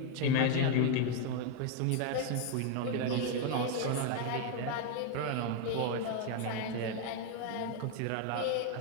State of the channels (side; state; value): both; different; correlation 0.01